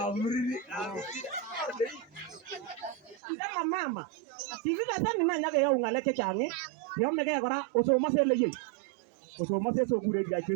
ndama mama kikikesan ina nyakeyau ng'alek chechang yomegei kora osomose eleyei osomose sokure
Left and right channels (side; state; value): left; drops out; at 3.2 s